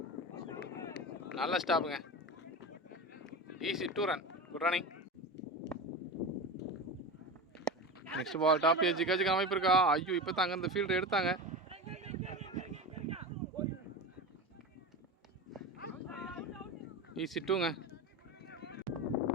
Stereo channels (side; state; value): both; normal; correlation 0.25